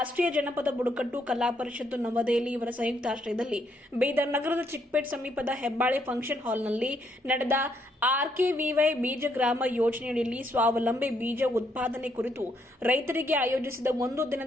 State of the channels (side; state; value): both; normal; correlation 0.73